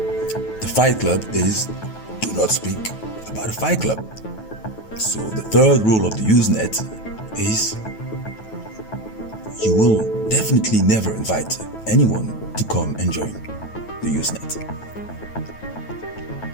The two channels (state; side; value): late; right; 9.2 ms